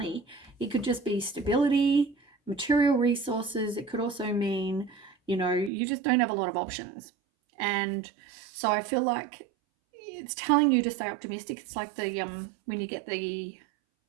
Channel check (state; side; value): drops out; left; at 5.7 s